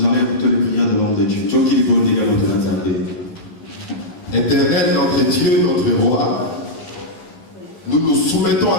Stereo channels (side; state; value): right; late; 12 ms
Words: allons écouter les prières de l'homme de Dieu. Éternel, notre Dieu, notre roi, nous nous soumettons à